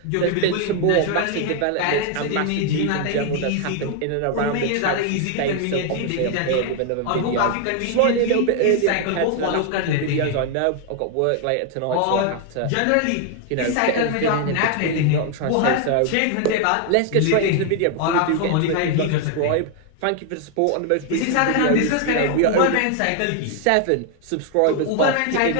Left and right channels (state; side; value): different; both; correlation 0.00